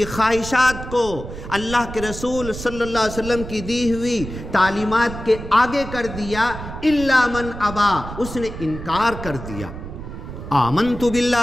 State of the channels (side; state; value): right; noise; rumble, 10 dB below the sound